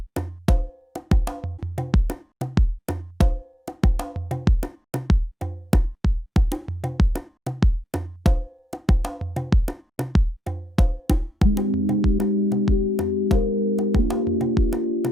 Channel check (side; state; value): both; normal; correlation 0.82